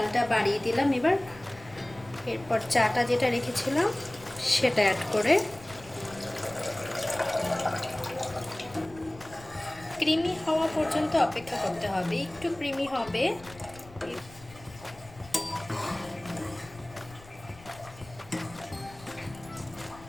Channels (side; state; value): left; noise; rumble, 20 dB below the sound